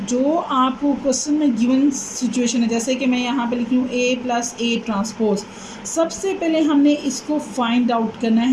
जो आपको क्वेश्चन में गिवन सिचुएशन है, जैसे कि मैं यहाँ पे लिखी हूँ ए प्लस ए ट्रांसपोज, सबसे पहले हमने इसको फाइंड आउट करना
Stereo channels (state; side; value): identical; both; correlation 1.00